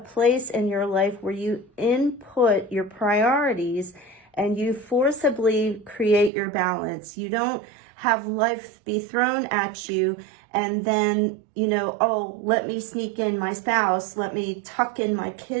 in your life where you input your priorities and you forcibly create your balance. You don't have life be thrown at you And then, oh, let me sneak in my spouse, let me tuck in my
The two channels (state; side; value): drops out; left; at 6.3 s